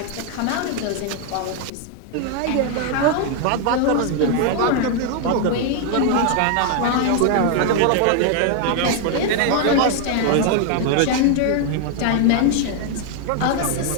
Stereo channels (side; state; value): both; different; correlation 0.00